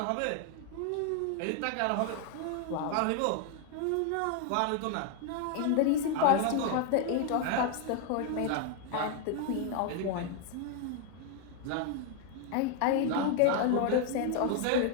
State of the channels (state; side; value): different; both; correlation 0.00